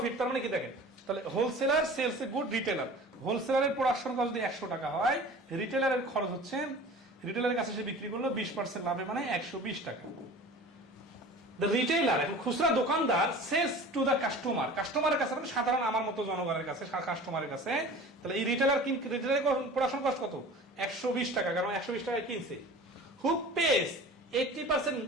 তার মানে কি দেখেন, তাহলে wholesaler sells a good retailer, হোলসেলারের প্রোডাকশন কস্ট যদি 100 টাকা হয়, রিটেলারের খরচ হচ্ছে, রিটেলারের কাছে সে বিক্রি করলো 20% লাভে, মানে 120 টাকা। দ্য রিটেইলার, এখন খুচরা দোকানদার, সেলস টু দ্য কাস্টমার, কাস্টমারের কাছে মানে সাধারণ আমার মতো জনগণের কাছে, কাস্টমারের কাছে। তাহলে এই রিটেলারের প্রোডাকশন কস্ট কত? 120 টাকা, কারণ 120 টাকায় কিনছে। হু পেস 80%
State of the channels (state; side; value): normal; both; correlation 0.40